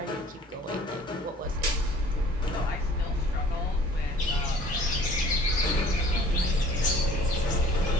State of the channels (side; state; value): both; normal; correlation 0.52